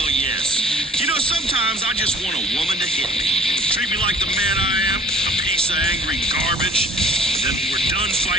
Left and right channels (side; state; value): both; normal; correlation 0.51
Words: yes. You know, sometimes I just want a woman to hit me. Treat me like the man I am, a piece of angry garbage. And then when we're done